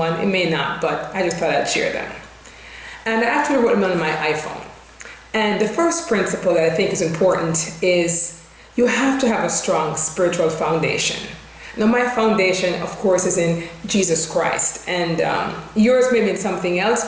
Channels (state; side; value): identical; both; correlation 1.00